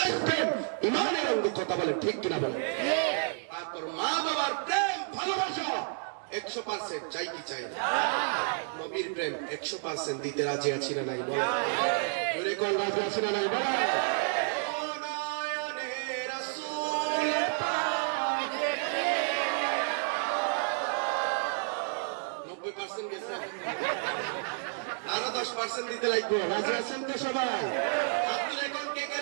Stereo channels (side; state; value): left; silent; 57 dB below the other